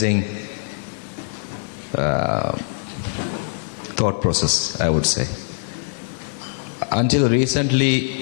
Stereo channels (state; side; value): silent; right; digital silence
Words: thought process, I would say. Until